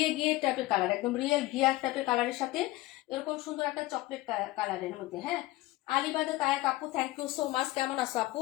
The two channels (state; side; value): quieter; right; 18.7 dB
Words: গিয়ে টাইপের কালার, একদম রিয়েল গিয়ার টাইপের কালারের সাথে এরকম সুন্দর একটা চকলেট কালারের মধ্যে। হ্যাঁ, আলিবাদে তায়াক আপু থ্যাংক ইউ সো মাচ। কেমন আছো